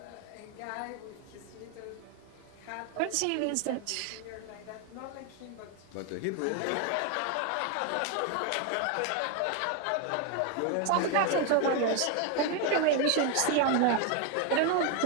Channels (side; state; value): both; different; correlation 0.01